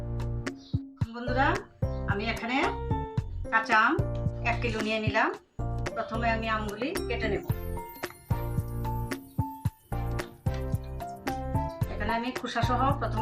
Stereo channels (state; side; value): identical; both; correlation 1.00